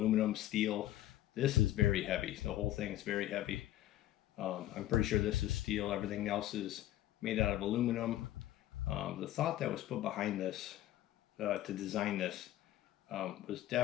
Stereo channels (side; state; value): right; quieter; 13.9 dB